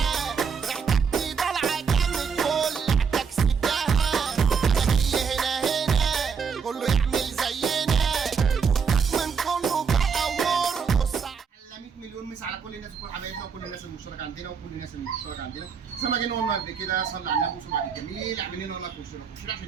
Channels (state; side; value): quieter; left; 6.1 dB